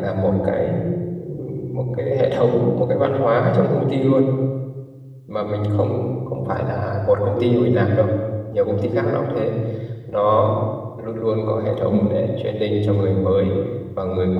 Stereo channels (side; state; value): both; identical; correlation 1.00